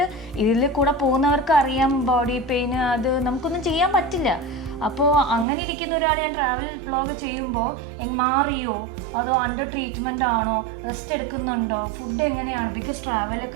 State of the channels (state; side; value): drops out; left; at 5.5 s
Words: ഇതിൽ കൂടെ പോകുന്നവർക്ക് അറിയാം ബോഡി പെയിൻ, അത് നമുക്കൊന്നും ചെയ്യാൻ പറ്റില്ല. അപ്പോൾ അങ്ങനെ ഇരിക്കുന്ന ഒരാൾ ഞാൻ ട്രാവൽ വ്ളോഗ് ചെയ്യുമ്പോൾ മാറിയോ, അതോ അണ്ടർ ട്രീറ്റ്മെൻ്റ് ആണോ, റെസ്റ്റ് എടുക്കുന്നുണ്ടോ, ഫുഡ് എങ്ങനെയാണ്? ബിക്കോസ്